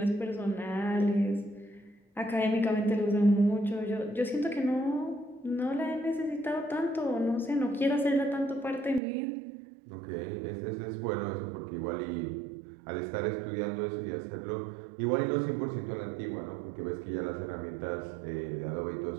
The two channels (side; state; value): left; drops out; at 9.0 s